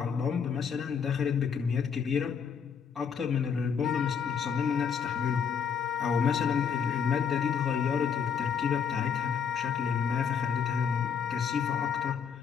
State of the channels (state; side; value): quieter; right; 7.0 dB